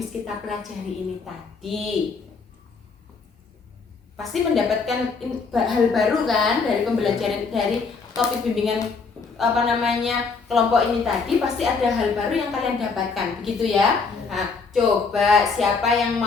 kita pelajari ini tadi. Pasti mendapatkan hal baru kan dari pembelajaran, dari topik bimbingan kelompok ini tadi. Pasti ada hal baru yang kalian dapatkan, begitu ya. Nah, coba siapa yang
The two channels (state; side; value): quieter; right; 4.7 dB